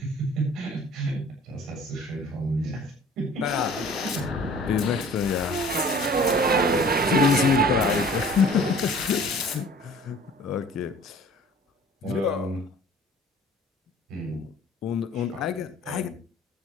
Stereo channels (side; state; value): both; normal; correlation 0.49